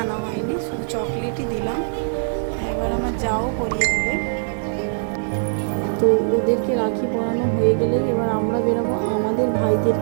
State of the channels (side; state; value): left; silent; 64 dB below the other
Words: আনা হয়নি, শুধু চকলেটই দিলাম। এবার আমার যাও পরিয়ে দেবে। তো ওদেরকে রাখি পরানো হয়ে গেলেই এবার আমরা বেরোবো আমাদের